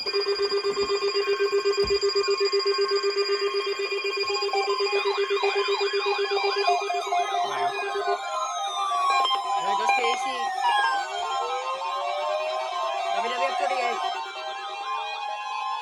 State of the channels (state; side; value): identical; both; correlation 1.00